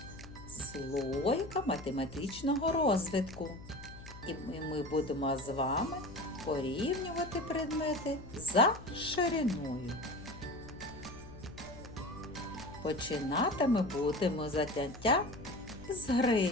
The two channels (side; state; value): left; noise; hum, 15 dB below the sound